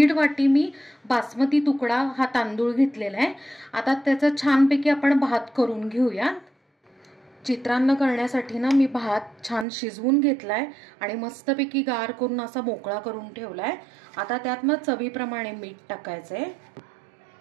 वाटी मी बासमती तुकडा हा तांदूळ घेतलेला आहे। आता त्याचा छानपैकी आपण भात करून घेऊया। चित्रान्न करण्यासाठी ना मी भात छान शिजवून घेतलाय आणि मस्तपैकी गार करून असा मोकळा करून ठेवलाय। आता त्यात ना चवीप्रमाणे मीठ टाकायचंय,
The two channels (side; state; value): left; drops out; at 9.7 s